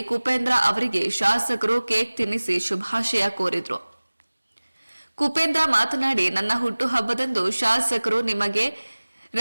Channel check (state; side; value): inverted; both; correlation -1.00